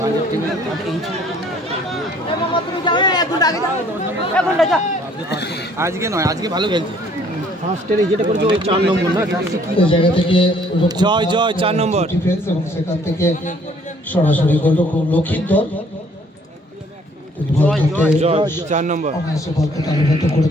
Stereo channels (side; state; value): both; normal; correlation 0.60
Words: আজকে নয়, আজকে ভালো খেলছে। ফার্স্টের যেটা করেছে ওই 4 নম্বর না, জায়গা থেকে জয় 4 নম্বর ডিফেন্স এবং সেখান থেকে সরাসরি গোলরক্ষক লক্ষিন্দর 4 নম্বর অনায়াসে বলকে তালিবদ্ধ